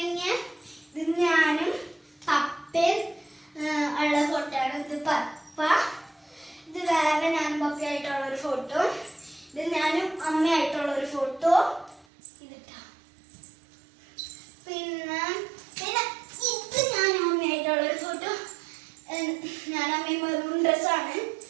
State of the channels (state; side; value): drops out; left; at 12.1 s